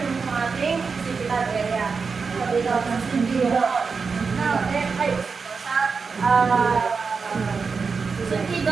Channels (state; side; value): quieter; left; 5.0 dB